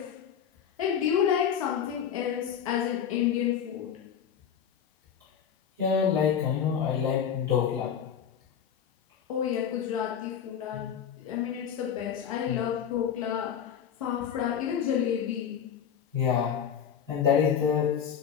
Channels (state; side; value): quieter; right; 8.4 dB